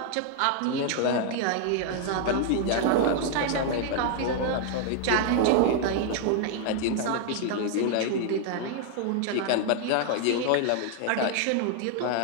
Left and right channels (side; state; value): both; different; correlation 0.00